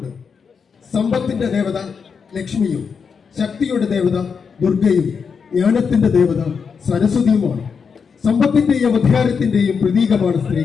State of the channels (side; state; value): right; quieter; 6.0 dB